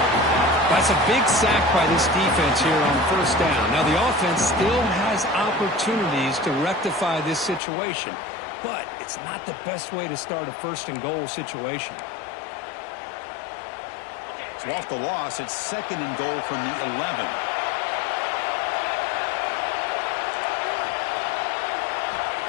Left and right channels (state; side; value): drops out; right; at 7.6 s